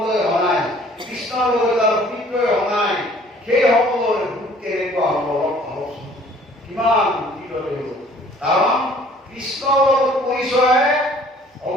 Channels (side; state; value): both; normal; correlation 0.55